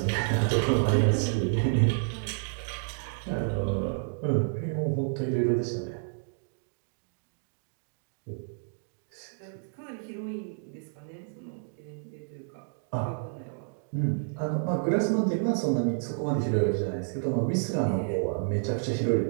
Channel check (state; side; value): silent; left; digital silence